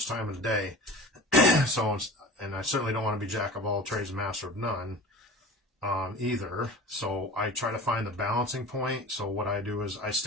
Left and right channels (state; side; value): normal; both; correlation 0.37